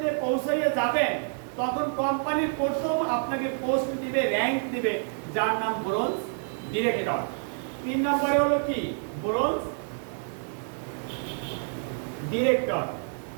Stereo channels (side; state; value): left; silent; 59 dB below the other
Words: এ পৌঁছাইয়ে যাবেন তখন কোম্পানির প্রথম আপনাকে পোস্ট দিবে, র‍্যাঙ্ক দিবে, যার নাম ব্রোঞ্জ ডিরেক্টর। 3 নম্বরে হলো কি ব্রোঞ্জ ডিরেক্টর।